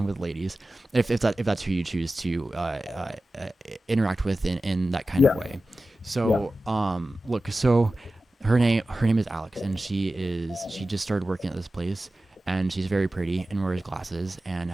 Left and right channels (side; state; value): both; normal; correlation 0.95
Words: with ladies, if that's who you choose to interact with in that kind of Yeah. way. Yeah. So look, so her name is Alex, and she just started working at this place, and she's very pretty and wears glasses and